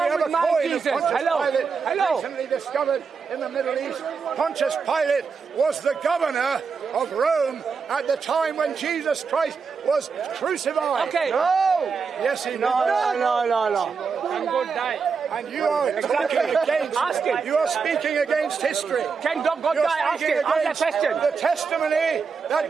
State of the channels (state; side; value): quieter; left; 5.4 dB